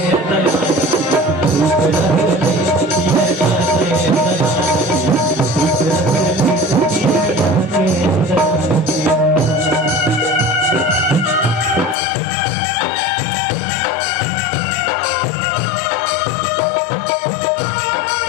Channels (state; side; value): drops out; right; at 12.0 s